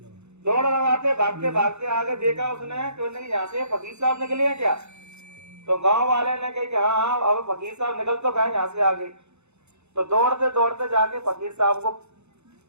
दौड़ लगाते भागते भागते आगे देखा उसने कि यहाँ से फकीर साहब निकले हैं क्या, तो गांव वाले ने कही कि हाँ अब फकीर साहब निकल तो गए यहाँ से आगे। तो दौड़ते दौड़ते जाके फकीर साहब को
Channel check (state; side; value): late; left; 0.81 ms